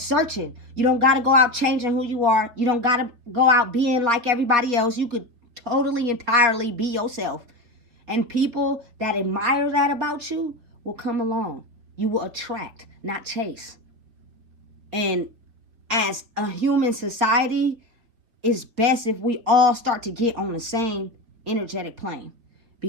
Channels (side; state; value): left; late; 4.2 ms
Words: searching. You don't got to go out changing who you are. You don't got to go out being like everybody else. You could totally, entirely be yourself. And people that admire that about you will come along. You will attract, not chase. And as a human society, it's best if we all start to get on the same energetic plane,